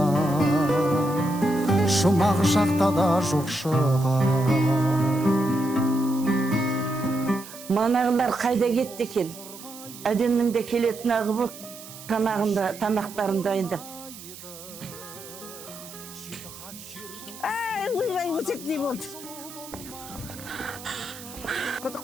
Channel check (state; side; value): noise; right; hiss, 15 dB below the sound